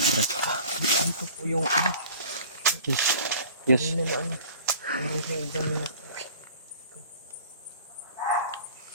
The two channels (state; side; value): inverted; both; correlation -0.46